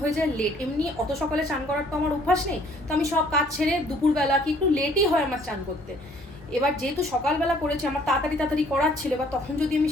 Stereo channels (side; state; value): both; normal; correlation 0.59